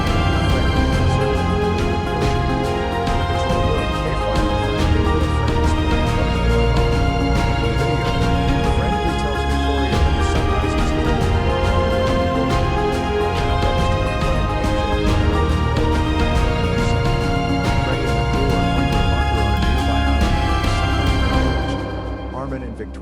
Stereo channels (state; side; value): identical; both; correlation 1.00